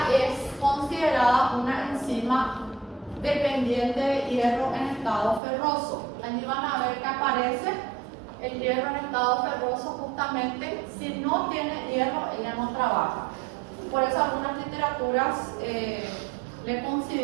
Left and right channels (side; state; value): left; drops out; at 5.4 s